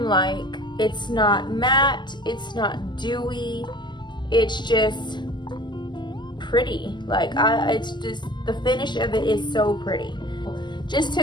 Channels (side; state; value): right; late; 0.21 ms